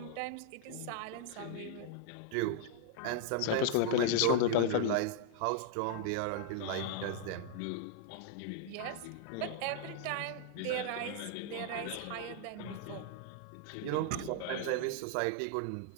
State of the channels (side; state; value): both; different; correlation 0.00